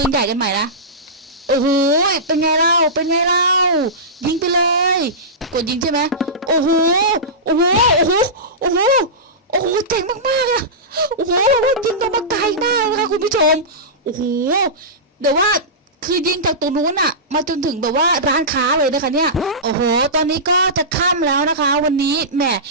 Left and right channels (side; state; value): both; normal; correlation -0.18